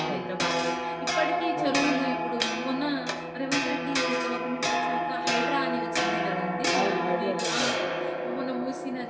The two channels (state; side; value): identical; both; correlation 1.00